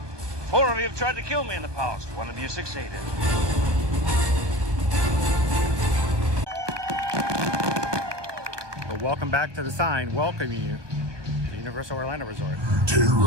4 of you have tried to kill me in the past. 1 of you succeeded. But welcome back to the sign welcoming you to Universal Orlando Resort.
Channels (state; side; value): late; left; 1.2 ms